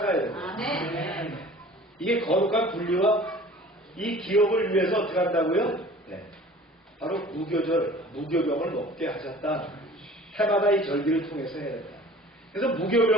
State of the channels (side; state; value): both; normal; correlation 0.46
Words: 돼요. 이게 거룩한 분리와 이 기업을 위해서 어떻게 한다고요? 네. 바로 무교병을 먹게 하셨다. 해마다 이 절기를 통해서 해야 된다. 그래서